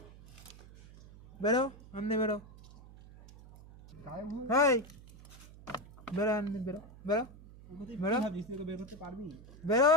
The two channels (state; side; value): noise; right; hum, 19 dB below the sound